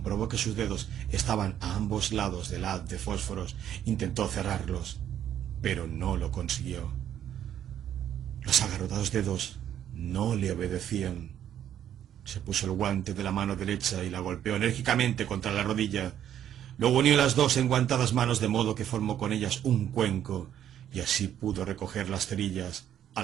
que sus dedos estaban a ambos lados del haz de fósforos, intentó cerrarlos, pero no lo consiguió. Los agarrotados dedos no le obedecían. Se puso el guante de la mano derecha y la golpeó enérgicamente contra la rodilla. Luego unió las dos enguantadas manos de modo que formó con ellas un cuenco, y así pudo recoger las cerillas, a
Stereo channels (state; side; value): quieter; left; 10.4 dB